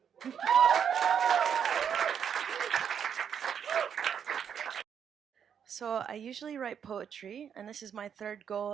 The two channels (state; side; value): quieter; left; 8.0 dB